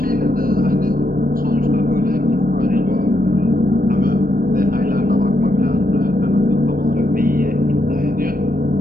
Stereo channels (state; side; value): late; left; 0.41 ms